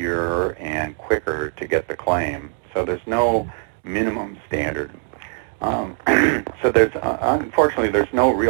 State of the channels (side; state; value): left; silent; 65 dB below the other